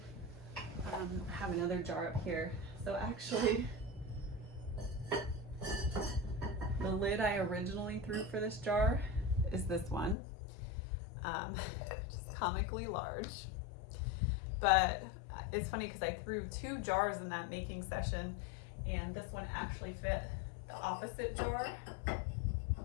I have another jar up here. So actually, the lid I originally threw for this jar is this one, just comically large. But it's funny because I threw 2 jars in that making session, and this one actually fit the opposite jar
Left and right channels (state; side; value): drops out; right; at 10.2 s